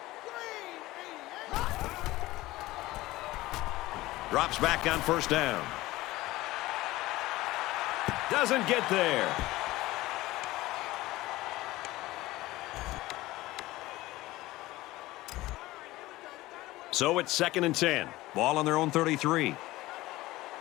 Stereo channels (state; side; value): quieter; right; 18.1 dB